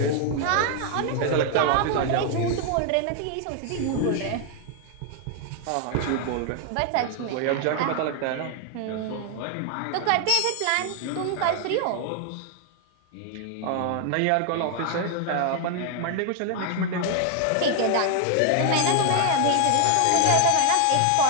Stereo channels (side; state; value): both; different; correlation 0.00